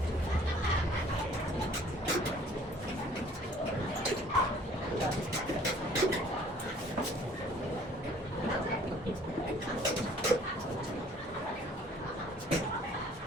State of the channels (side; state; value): both; normal; correlation 0.55